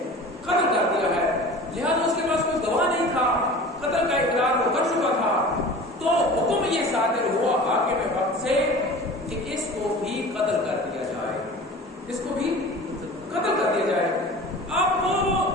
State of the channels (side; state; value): both; normal; correlation 0.39